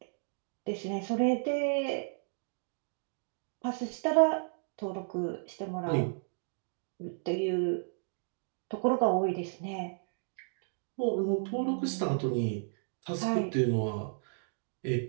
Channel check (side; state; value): left; silent; digital silence